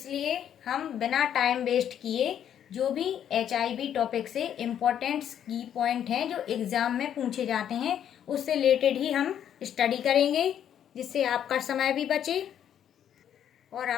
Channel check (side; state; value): right; quieter; 9.7 dB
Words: हम बिना टाइम वेस्ट किए जो भी HIV टॉपिक से इम्पोर्टेंट की पॉइंट हैं जो एग्ज़ाम में पूछे जाते हैं, उससे रिलेटेड ही हम स्टडी करेंगे, जिससे आपका समय भी बचे और